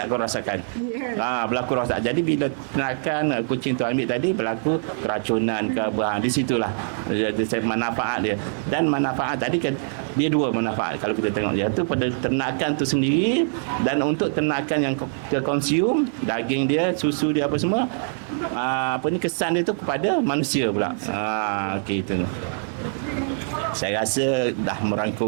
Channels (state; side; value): silent; left; digital silence